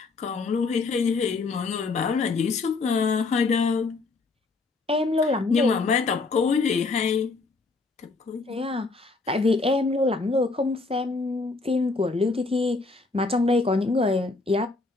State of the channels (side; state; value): right; quieter; 3.8 dB